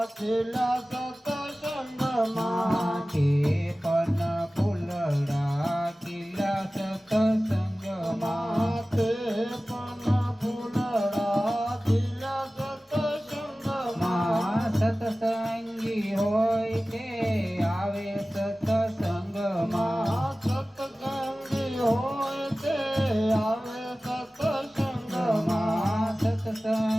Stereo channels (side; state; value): both; normal; correlation 0.97